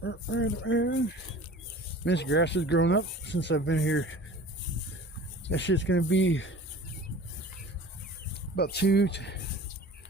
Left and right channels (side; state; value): both; normal; correlation 0.42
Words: This grass has grown up since I've been here. That shit's gonna be about